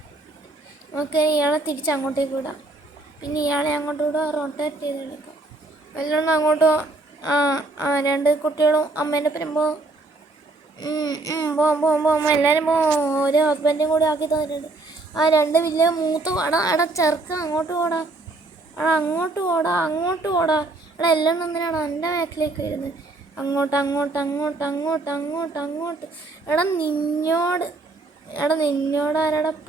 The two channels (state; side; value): quieter; left; 3.1 dB